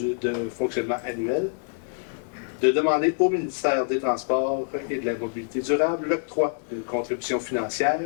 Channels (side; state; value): right; silent; 61 dB below the other